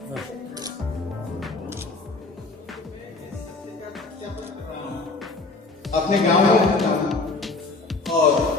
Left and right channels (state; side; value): quieter; right; 3.6 dB